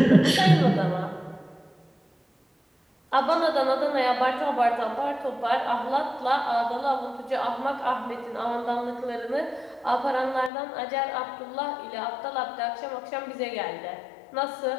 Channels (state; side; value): drops out; right; at 10.5 s